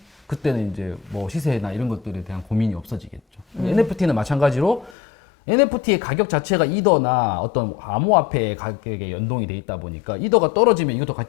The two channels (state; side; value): drops out; right; at 5.0 s